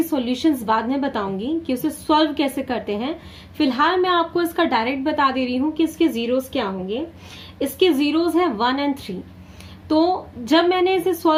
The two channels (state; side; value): identical; both; correlation 1.00